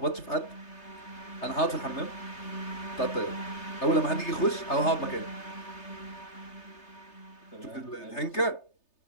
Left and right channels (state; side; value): late; right; 3.3 ms